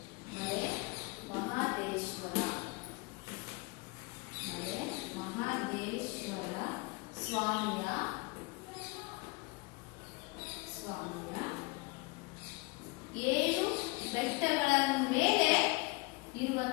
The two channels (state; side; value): quieter; right; 26.6 dB